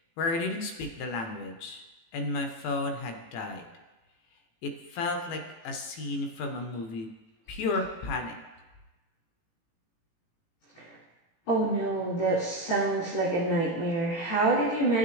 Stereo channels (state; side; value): late; right; 18 ms